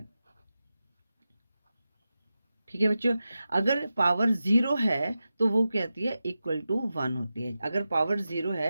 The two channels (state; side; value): inverted; both; correlation -0.92